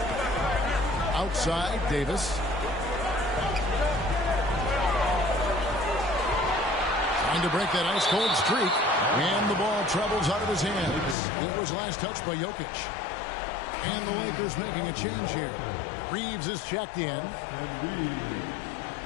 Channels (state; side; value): drops out; right; at 11.2 s